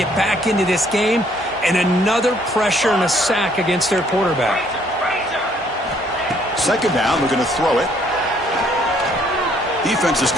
back into this game, and another pressure and a sack against their quarterback. 2nd down, they're going to throw it. Defense is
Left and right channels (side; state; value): both; normal; correlation 0.65